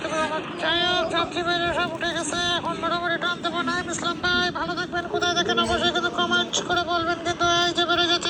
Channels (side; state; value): both; identical; correlation 1.00